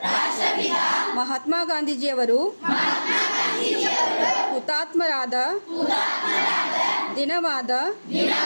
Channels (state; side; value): inverted; both; correlation -1.00